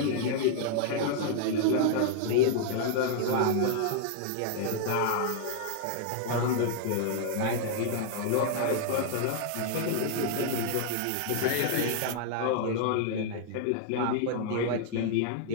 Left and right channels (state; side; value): different; both; correlation -0.01